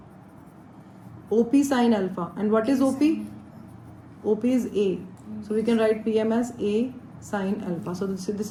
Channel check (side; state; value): both; identical; correlation 1.00